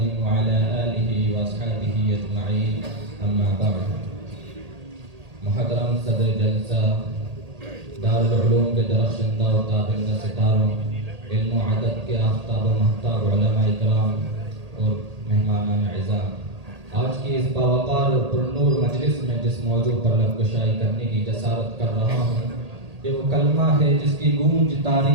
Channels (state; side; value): late; left; 1.8 ms